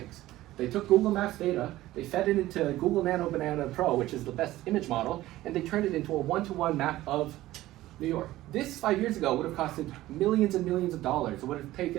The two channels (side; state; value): left; quieter; 16.1 dB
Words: They took Google Maps data, they fed it into Google Nano Banana Pro, which is the best image model, and they turned it into a one-to-one map of New York. This 5 years ago would have costed millions and millions of dollars. It would have